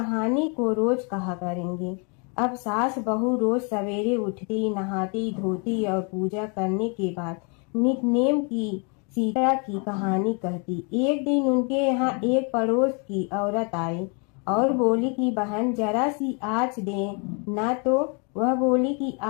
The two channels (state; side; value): quieter; right; 35.4 dB